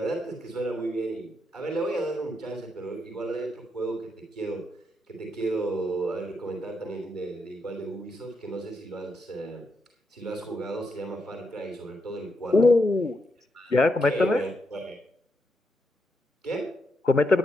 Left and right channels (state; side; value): normal; both; correlation 0.81